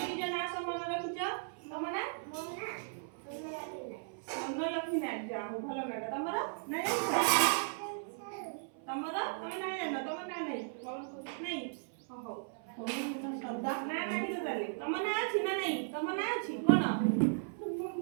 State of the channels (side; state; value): left; silent; 54 dB below the other